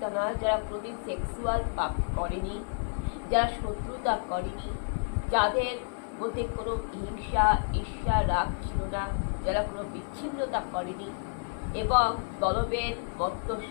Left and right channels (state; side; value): silent; right; digital silence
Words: নয়, যারা কোনোদিন সেক্সুয়াল পাপ করেনি, যারা শত্রুতা করেনি, যাদের মধ্যে কোনো হিংসা, ঈর্ষা, রাগ ছিল না, যারা কোনো বিচ্ছিন্নতা করেনি এবং দলবেদ,